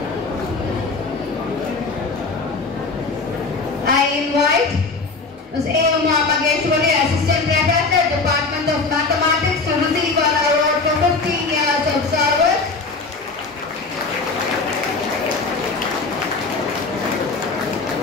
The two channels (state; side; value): quieter; right; 4.0 dB